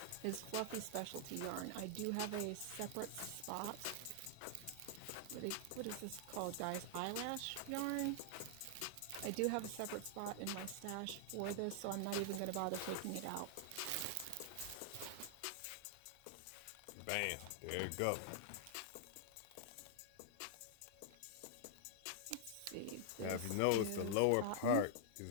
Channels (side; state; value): both; different; correlation -0.01